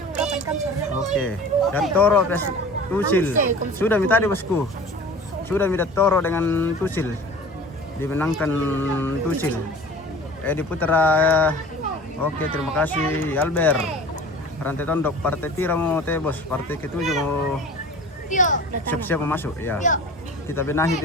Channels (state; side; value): normal; both; correlation 0.41